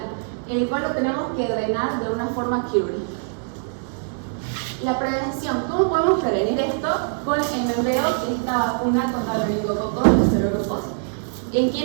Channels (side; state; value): left; silent; digital silence